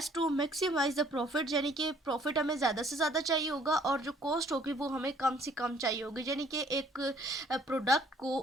to maximise the profit, यानी कि प्रॉफिट हमें ज़्यादा से ज़्यादा चाहिए होगा और जो कॉस्ट होगी वो हमें कम से कम चाहिए होगी। यानी कि एक प्रोडक्ट को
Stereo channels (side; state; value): both; normal; correlation 0.60